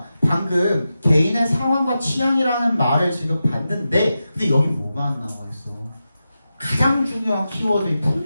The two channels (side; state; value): both; inverted; correlation -0.91